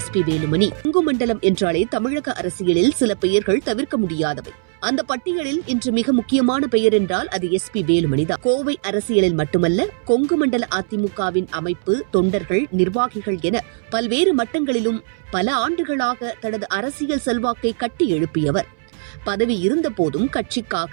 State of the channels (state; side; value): silent; left; 63 dB below the other